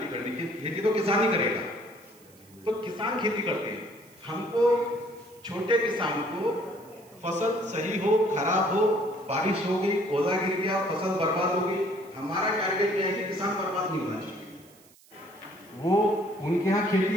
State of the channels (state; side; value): noise; right; hiss, 27 dB below the sound